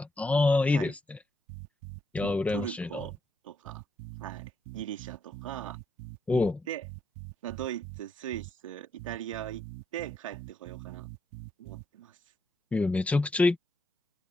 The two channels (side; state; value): both; normal; correlation 0.78